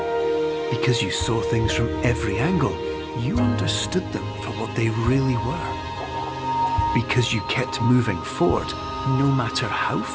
Because you saw things from every angle, you understood them for what they really were. Because you kept moving forward, no matter how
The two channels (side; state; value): both; identical; correlation 1.00